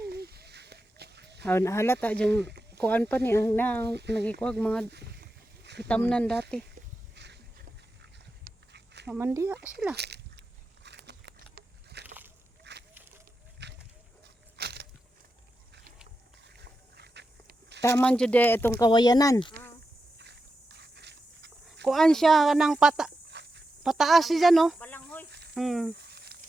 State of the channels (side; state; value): both; normal; correlation 0.90